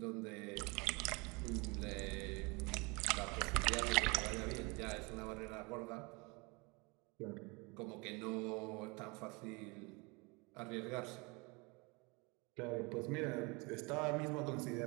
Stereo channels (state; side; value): quieter; left; 28.2 dB